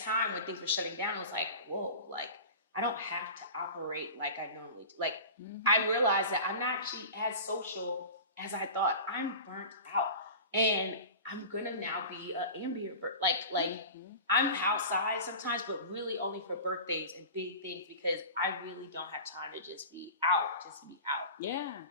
when things were shutting down, it was like, whoa, like, I don't have to operate like I normally do. Like, I realized that I'm not actually as social as I thought. I'm burnt out. And I'm gonna now be an ambient like I'm outside sometimes, but really only for birthdays and big things, because I really don't have time to just be out, Yeah.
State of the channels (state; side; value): inverted; both; correlation -0.35